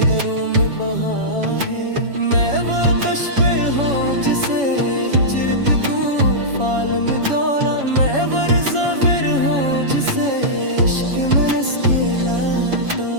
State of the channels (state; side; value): late; left; 7.2 ms